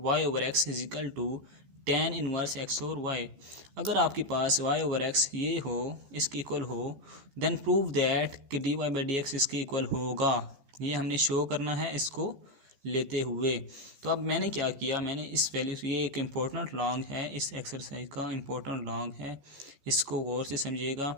over x is equal to tan inverse x over y. अगर आपके पास y ओवर एक्स ये हो, इसके इक्वल हो, देन प्रूव दैट कि d y by d x इसके इक्वल होगा। ये हमने शो करना है इसको लेते हुए। तो अब मैंने क्या किया, मैंने इस वैल्यू से, ये एक इम्पोर्टेंट लॉन्ग है, इस एक्सरसाइज का इम्पोर्टेंट लॉन्ग है, इसको गौर से समझिएगा।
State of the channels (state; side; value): late; left; 14 ms